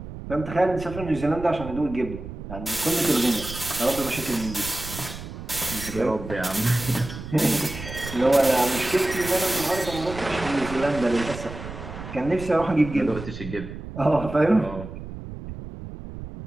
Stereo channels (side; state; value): right; noise; rumble, 11 dB below the sound